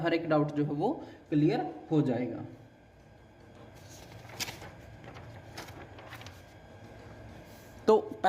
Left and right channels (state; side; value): identical; both; correlation 1.00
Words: हर एक डाउट जो है वो क्लियर हो जाएगा। तो